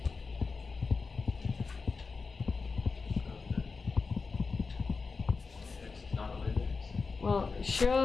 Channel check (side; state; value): right; quieter; 4.5 dB